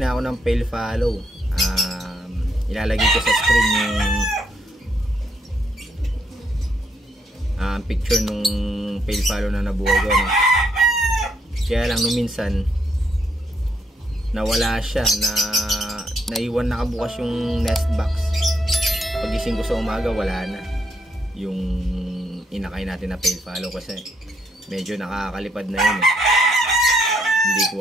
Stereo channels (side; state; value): both; normal; correlation 0.75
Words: na ako ng fail follow. Ilalagay ko sa screen yung picture nung fail follow na nabuhay ko, no? Kaya lang nung minsan nawala siya, naiwan nakabukas yung nest box. Pagising ko sa umaga, wala na yung inakay natin na fail follow kasi medyo nakakalipad na yun, eh. Hindi